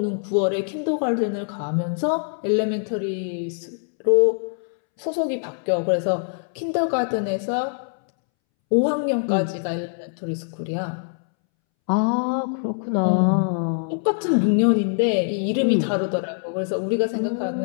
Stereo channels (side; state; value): right; silent; 63 dB below the other